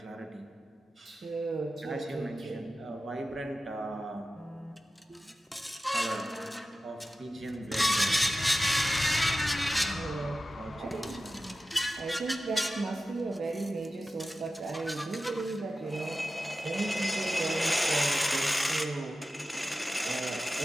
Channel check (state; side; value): normal; both; correlation 0.94